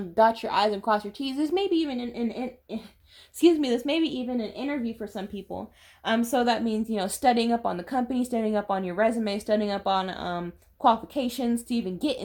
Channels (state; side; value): identical; both; correlation 1.00